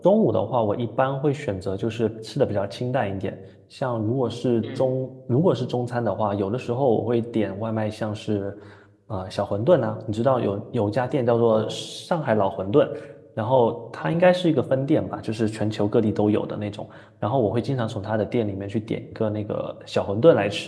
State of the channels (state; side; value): identical; both; correlation 1.00